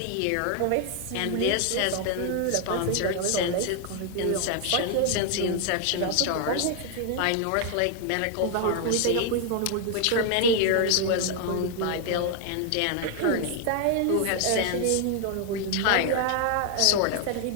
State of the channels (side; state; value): both; different; correlation 0.00